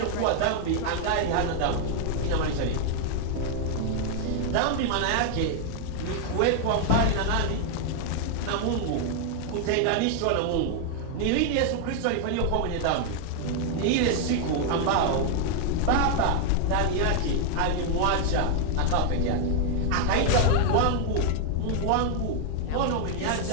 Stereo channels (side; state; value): both; different; correlation 0.00